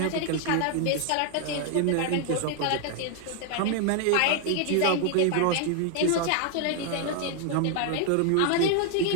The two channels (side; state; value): both; different; correlation 0.00